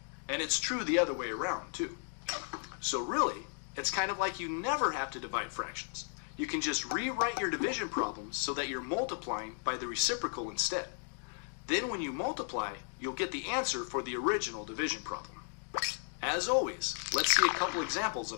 And it's true the other way around, too. So really, it's kind of like you never have to divide fractions. You can just rewrite your division problems so that you're multiplying by the reciprocal instead. Then when you multiply, you'll get the answer for the original division problem. As always, let's see a couple examples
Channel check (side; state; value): right; silent; 55 dB below the other